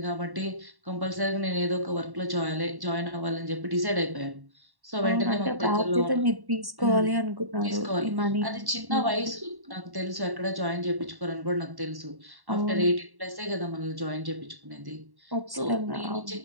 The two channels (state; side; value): late; left; 1.1 ms